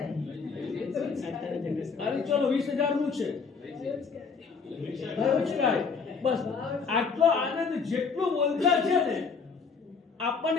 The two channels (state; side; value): quieter; right; 5.2 dB